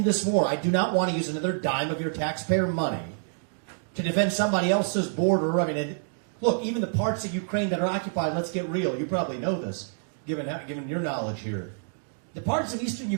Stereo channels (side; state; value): left; silent; digital silence